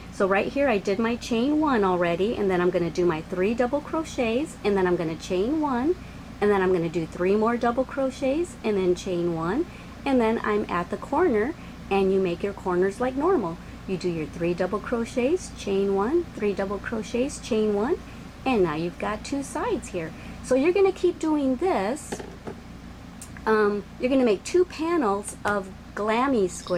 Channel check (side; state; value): both; identical; correlation 1.00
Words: So right here I did my chain 1 already, and then I'm going to do my 3 double crochets, and then I'm going to chain 1, and then I'm going to do 3 more double crochets, and then chain 1, and then I'm at the corner, and you make your corners like normal. You do your 3 double crochets, chain 1, 3 double crochets, chain 1, and now you've got 2 sides here. So you're going to keep doing this. You're going to make 2 panels of Glammy